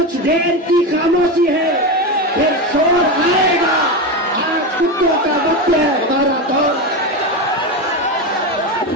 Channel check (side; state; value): both; normal; correlation 0.17